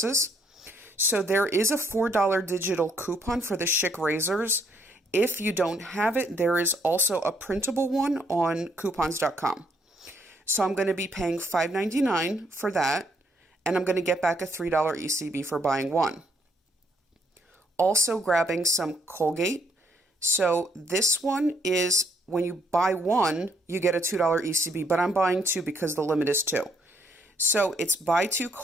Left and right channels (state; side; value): normal; both; correlation 0.70